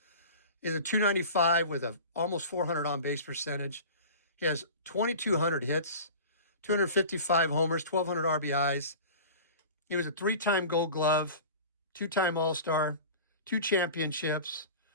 Is a 295 with a almost 400 on base percentage. He has 2,200 hits, 255 homers, 1,200 RBIs. He was a 3-time Gold Glove, 2-time All-Star, 2 championships,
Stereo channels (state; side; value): inverted; both; correlation -0.37